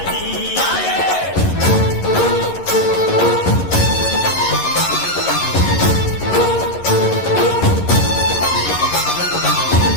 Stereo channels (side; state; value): right; late; 11 ms